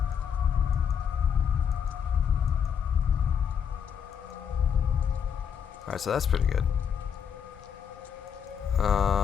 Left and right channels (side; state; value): right; quieter; 7.6 dB